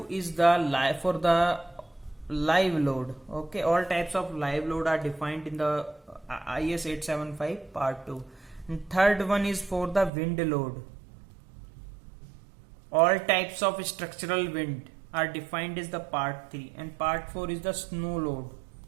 is the live load. Okay, all types of live load are defined in the IS 875 part 2. And third one is for the wind load. All types of structural wind are defined as the part 3, and part 4 is the snow load.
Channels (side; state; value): left; drops out; at 10.1 s